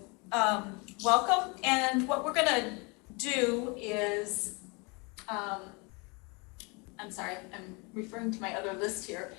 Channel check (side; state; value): right; quieter; 29.8 dB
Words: welcome, and what we're gonna do is, I'm sorry, I'm referring to my other list here,